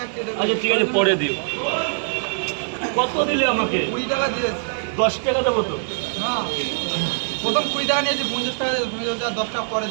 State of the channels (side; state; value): left; silent; 59 dB below the other